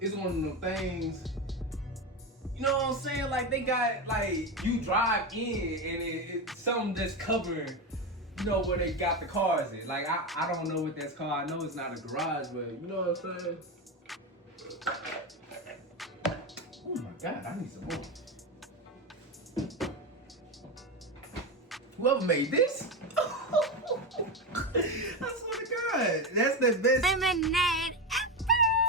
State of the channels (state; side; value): normal; both; correlation 0.16